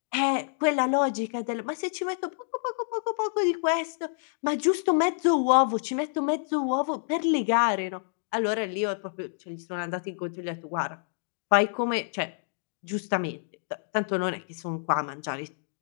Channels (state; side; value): silent; right; digital silence